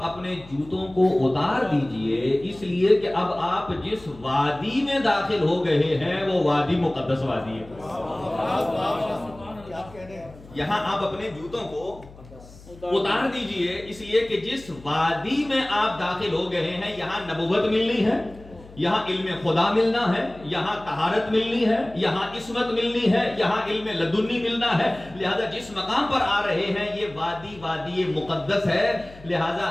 اپنے جوتوں کو اتار دیجئے، اس لیے کہ اب آپ جس وادی میں داخل ہو گئے ہیں وہ وادی مقدس وادی ہے. یہاں آپ اپنے جوتوں کو اتار دیجئے، اس لیے کہ جس وادی میں آپ داخل ہو گئے ہیں یہاں نبوت ملنی ہے، یہاں علم خدا ملنا ہے، یہاں طہارت ملنی ہے، یہاں عصمت ملنی ہے، یہاں علم لدنی ملنا ہے. لہذا جس مقام پر آ رہے ہیں یہ وادی مقدس ہے. لہذا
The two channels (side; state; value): left; noise; hum, 20 dB below the sound